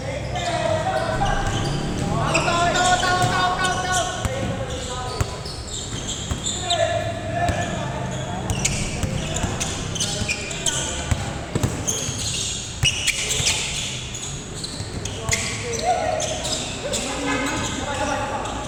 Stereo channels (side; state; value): both; identical; correlation 1.00